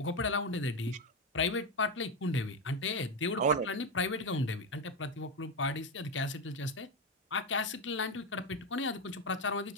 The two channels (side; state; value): both; normal; correlation 0.11